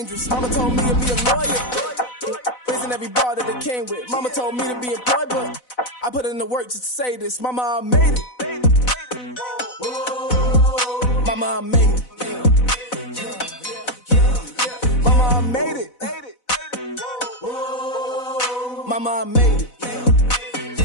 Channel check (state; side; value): late; right; 4.0 ms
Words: Mama told me to be a lawyer. Raising every bar that it came with. Mama told me to be employed, but I put in the work just to say this. Mama, I made it. Mama, I made it. Mama, I made it. Mama, I made it.